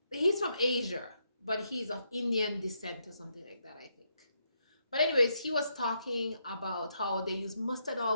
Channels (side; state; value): both; inverted; correlation -0.78